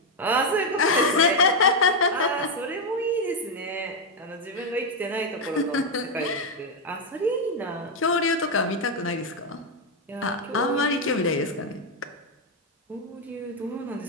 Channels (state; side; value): normal; both; correlation 0.03